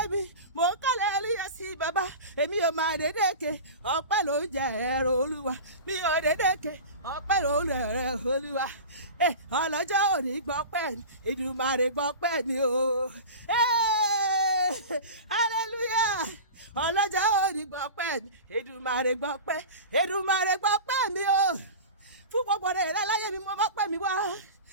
mi, mò ń kọ́lẹ̀ hallelujah sí bàbá. Èmi ò máa dédéke, ọpẹ́ ló ń jẹ ẹ̀rọ Olúwa. Mi ò dédéke, ọpẹ́ ló ń jẹ ẹ̀rọ Olúwa. Ọlọ́jọ́ òní gbọ́pẹ́ ni, Èdùmàrè gbọ́pẹ́ ni o. Hallelujah. Ọlọ́jọ́ òní gbọ́pẹ́ ni, Èdùmàrè gbọ́pẹ́. Èdùmàrè gbọ́pẹ́ mi o. Fún gbogbo rere láyé mi, mo mọ́pẹ́ mi wá.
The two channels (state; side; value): inverted; both; correlation -0.32